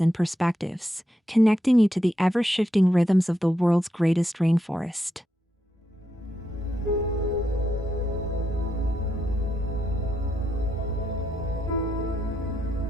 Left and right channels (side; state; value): both; normal; correlation 0.82